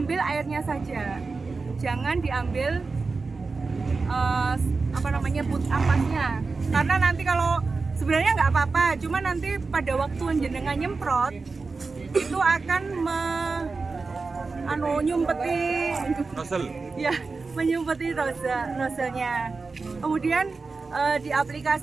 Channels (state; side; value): quieter; left; 4.2 dB